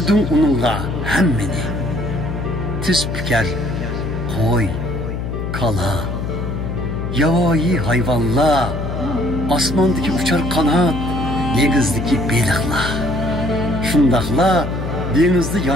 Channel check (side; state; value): left; noise; hum, 4 dB below the sound